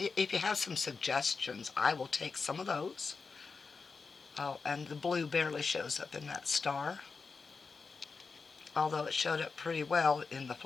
you have some suggestions, I will take some of those. Oh, and the blue barely shows up in that star, although it showed up pretty well in the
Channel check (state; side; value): quieter; right; 4.8 dB